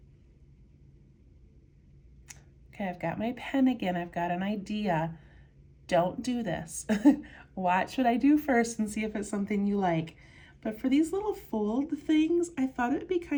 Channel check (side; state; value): both; identical; correlation 1.00